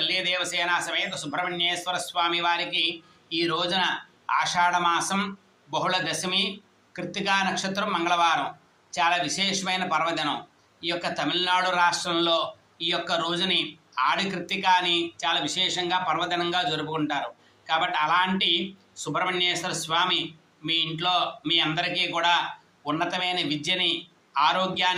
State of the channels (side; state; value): both; identical; correlation 1.00